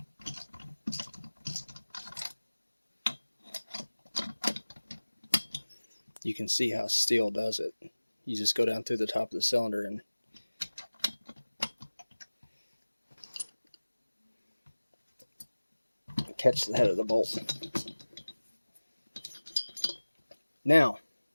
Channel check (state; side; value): inverted; both; correlation -1.00